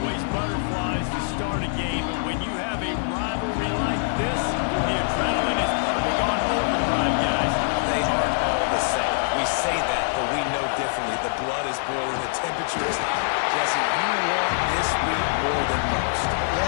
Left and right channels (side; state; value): right; silent; 58 dB below the other